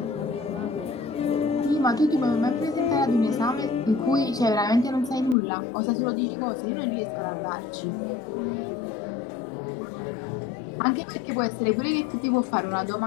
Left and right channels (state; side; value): drops out; right; at 5.4 s